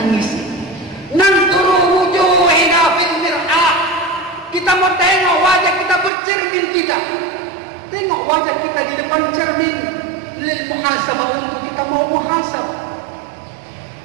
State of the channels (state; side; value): drops out; left; at 6.1 s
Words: Nanduru wujuhina fil mir'ah, kita mau tengok wajah kita, bercermin kita. Tengok wajah kita di depan cermin lil muhasabah, untuk kita mau muhasabah